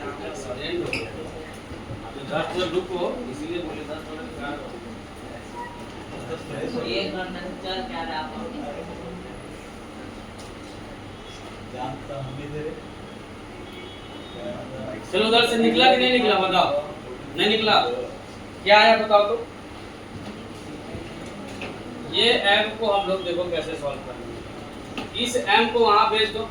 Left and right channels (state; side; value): identical; both; correlation 1.00